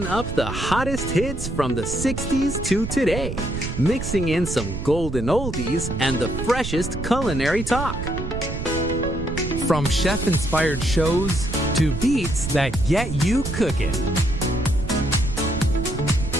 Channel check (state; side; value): noise; right; rumble, 5 dB below the sound